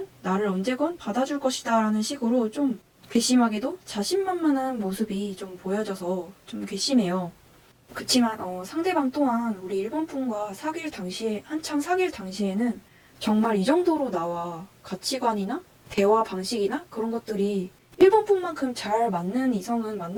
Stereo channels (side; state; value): both; identical; correlation 1.00